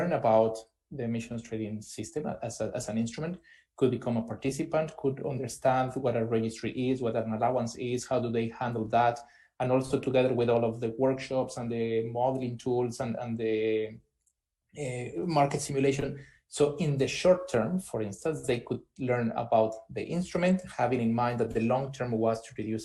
about the emissions trading system as an instrument, could become a participant, could understand what a registry is, what an allowance is, how do they handle that, and also together with all of the workshops and the modeling tools and the market simulation. So in the short term, for instance, they could learn about the instrument, having in mind that the long term was to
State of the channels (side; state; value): both; identical; correlation 1.00